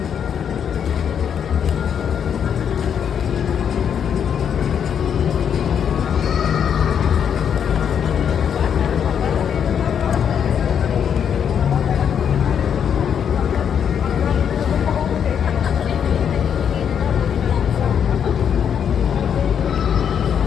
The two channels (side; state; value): right; quieter; 8.1 dB